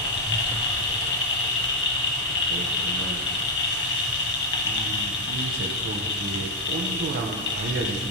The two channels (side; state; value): both; normal; correlation 0.03